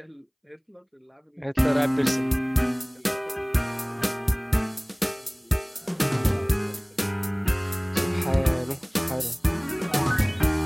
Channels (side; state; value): both; identical; correlation 1.00